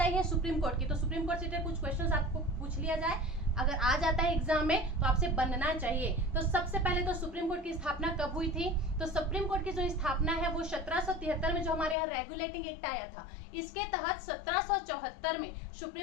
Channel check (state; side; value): drops out; right; at 12.0 s